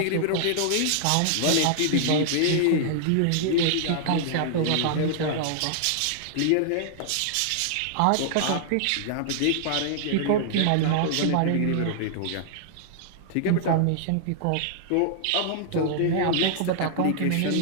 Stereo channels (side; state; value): both; different; correlation -0.01